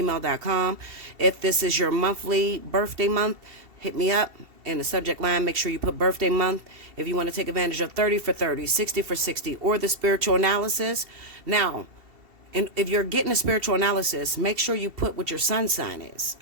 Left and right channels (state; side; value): late; left; 2.7 ms